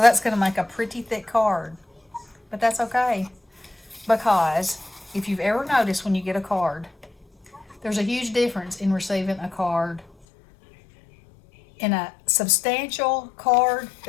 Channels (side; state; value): right; drops out; at 10.1 s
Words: going to make a pretty thick card. But that's okay, because if you've ever noticed when you get a card, there's a huge difference in receiving a card, in a substantial card